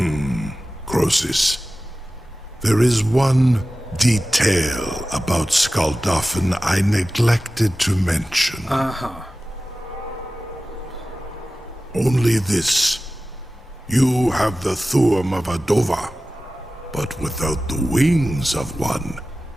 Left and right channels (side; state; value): both; normal; correlation 0.95